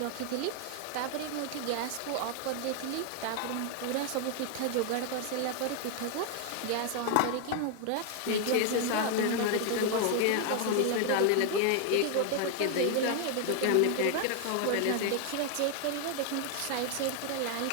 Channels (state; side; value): different; both; correlation 0.00